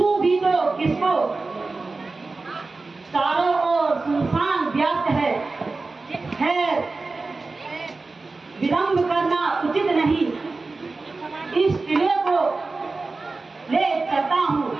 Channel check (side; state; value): left; quieter; 3.7 dB